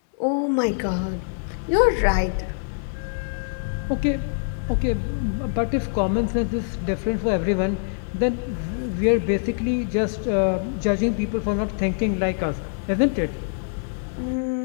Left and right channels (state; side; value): silent; right; digital silence